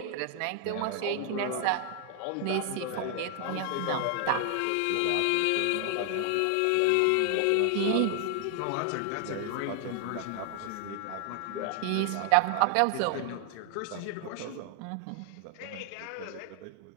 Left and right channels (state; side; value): different; both; correlation 0.00